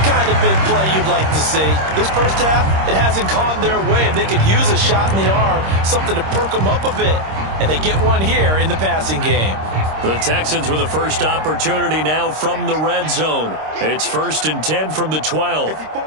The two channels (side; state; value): left; late; 26 ms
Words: kind of big play you'd like to see. This first half, it hasn't gone their way. And they could use a shot in the arm, something to perk them up a bit. And they get one here in the passing game. The Texans with the first opportunity now from the red zone. It's 1st and 10 from the 12. A